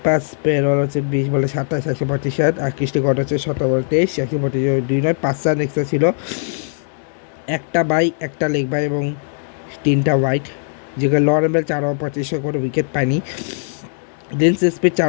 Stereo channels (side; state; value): right; silent; digital silence